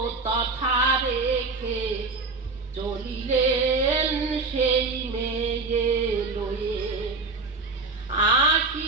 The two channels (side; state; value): left; quieter; 3.8 dB